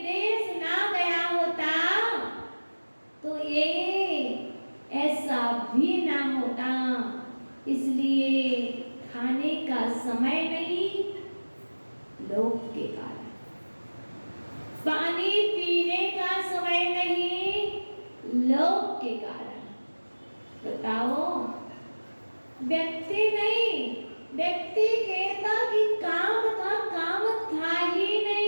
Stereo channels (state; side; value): inverted; both; correlation -1.00